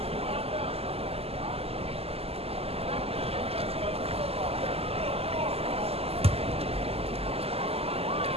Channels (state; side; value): late; left; 0.29 ms